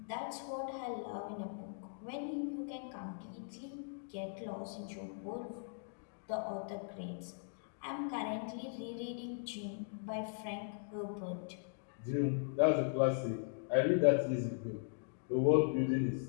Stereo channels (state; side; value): silent; right; digital silence